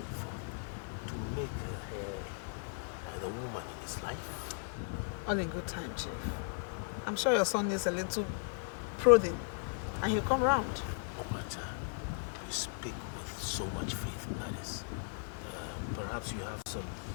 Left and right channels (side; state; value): right; silent; 53 dB below the other